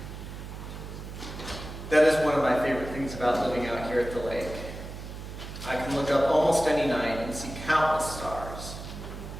That is one of my favorite things about living out here at the lake. I can look up almost any night and see countless stars.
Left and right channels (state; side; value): noise; right; hum, 10 dB below the sound